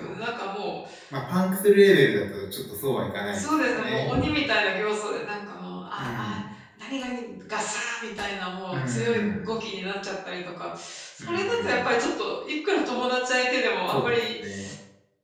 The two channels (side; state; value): both; identical; correlation 1.00